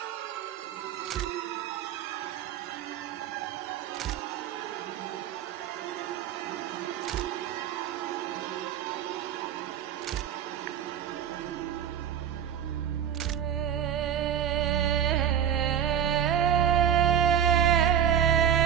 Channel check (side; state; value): left; quieter; 9.3 dB